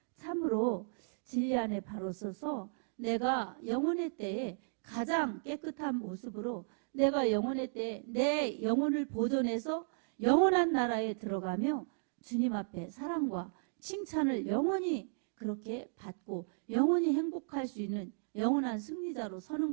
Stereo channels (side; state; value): left; silent; digital silence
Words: 참으로 진리 안에 바로 서서 내가 영혼의 때에 가장 깨끗한 모습으로 내가 영혼의 때에 내 영혼을 보존해서 영원한 나라에 들어가며 주님 앞에 사랑과 칭찬을 영원히 그렇게 받고 영원히 행복할 수 있는 영원한 승리자로 서는